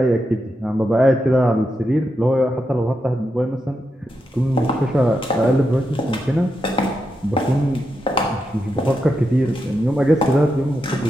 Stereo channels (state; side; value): normal; both; correlation 0.86